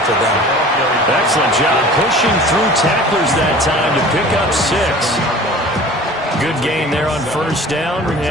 for them. Excellent job pushing through tacklers that time to pick up 6. Good gain there on first down.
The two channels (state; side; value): normal; both; correlation 0.43